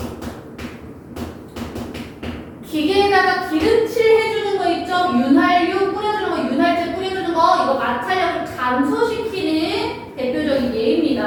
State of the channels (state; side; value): identical; both; correlation 1.00